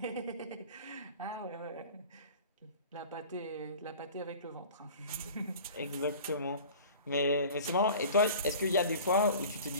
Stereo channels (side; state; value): both; inverted; correlation -0.41